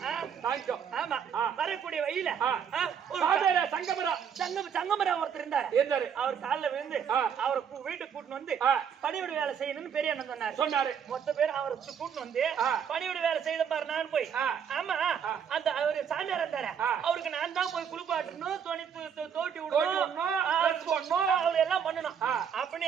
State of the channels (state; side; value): quieter; left; 7.7 dB